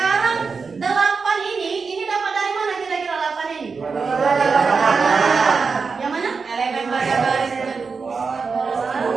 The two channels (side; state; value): left; quieter; 5.0 dB